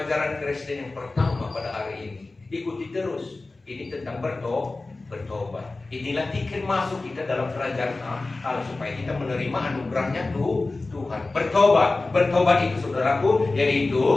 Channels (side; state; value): right; quieter; 3.3 dB